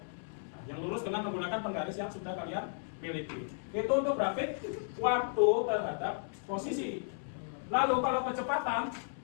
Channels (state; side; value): silent; right; 55 dB below the other